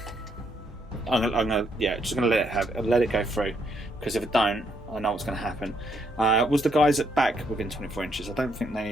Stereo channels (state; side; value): normal; both; correlation 0.74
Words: gonna just gonna let it go through, because if it don't, I know what's gonna happen. Was the guys at back within 24 inches? I don't think